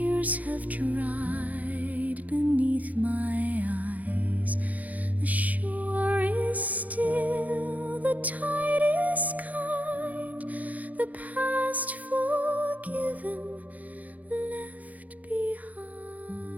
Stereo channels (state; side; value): late; left; 0.073 ms